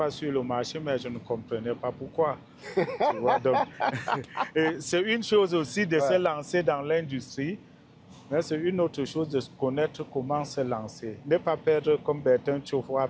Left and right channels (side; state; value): both; identical; correlation 1.00